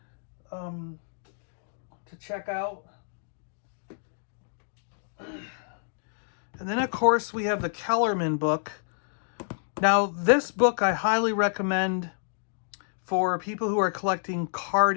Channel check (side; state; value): right; silent; digital silence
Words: to check out. And then, of course, we have the Kellerman book. Now, this book I highly recommend for people who are collecting